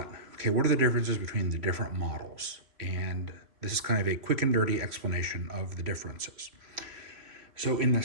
okay, what are the differences between the different models? And this is kind of a quick and dirty explanation of the differences. So in the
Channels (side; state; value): left; late; 3.0 ms